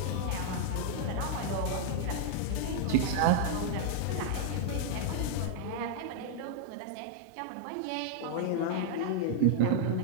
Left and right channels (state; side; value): different; both; correlation -0.01